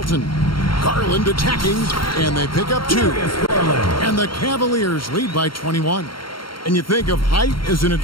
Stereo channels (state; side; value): late; right; 0.73 ms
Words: Garland attacking, and they pick up 2. And the Cavaliers lead by 21. And you think of height as an